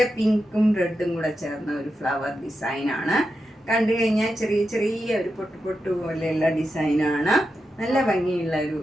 പിങ്കും റെഡും കൂടെ ചേർന്ന ഒരു ഫ്ലവർ ഡിസൈനാണ്. കണ്ടു കഴിഞ്ഞാൽ ചെറിയ ചെറിയ ഒരു പൊട്ട് പൊട്ട് പോലെയുള്ള ഡിസൈനാണ്. നല്ല ഭംഗിയുള്ള ഒരു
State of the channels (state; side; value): normal; both; correlation 0.88